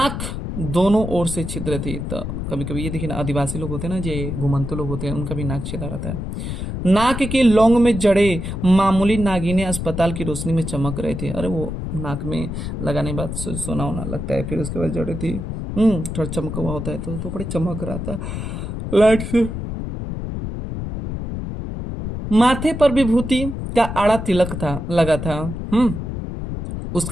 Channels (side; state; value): left; noise; rumble, 5 dB below the sound